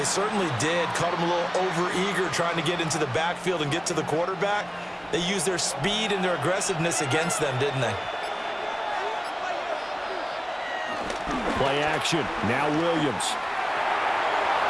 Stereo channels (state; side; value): identical; both; correlation 1.00